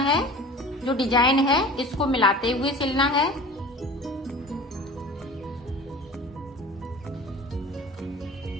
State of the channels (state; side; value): normal; both; correlation 0.39